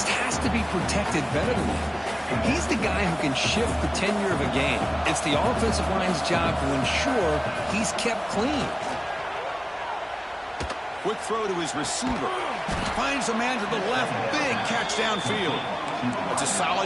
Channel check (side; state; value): both; identical; correlation 1.00